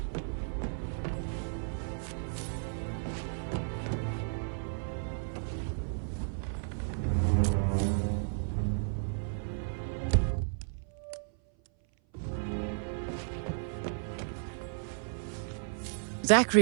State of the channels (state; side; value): silent; left; 55 dB below the other